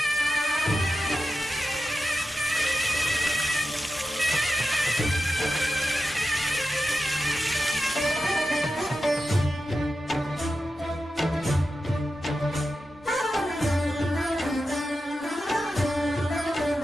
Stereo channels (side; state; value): both; normal; correlation 0.91